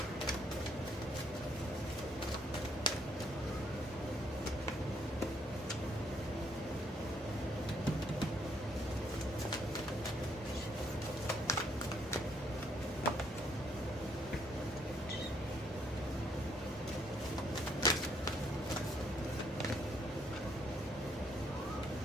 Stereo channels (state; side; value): normal; both; correlation 0.70